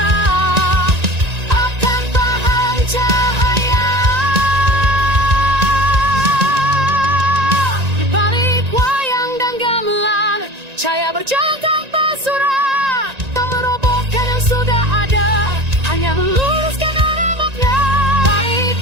akan paham cahaya. Di balik wayang dan gamelan, cahaya berjalan tanpa surat, tak merobohkan yang sudah ada, hanya meluruskan arah makna. Balik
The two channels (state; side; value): late; left; 1.9 ms